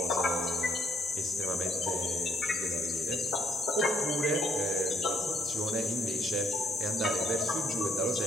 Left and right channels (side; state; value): both; normal; correlation 0.69